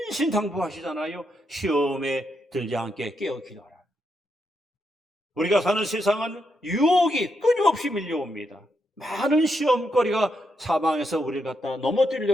시험에 들지 않게 깨어 기도하라. 우리가 사는 세상은 유혹이 끊임없이 밀려옵니다. 많은 시험거리가 사방에서 우리를 갖다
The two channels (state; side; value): normal; both; correlation 0.81